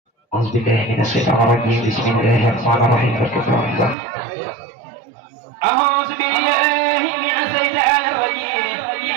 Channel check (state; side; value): drops out; left; at 4.0 s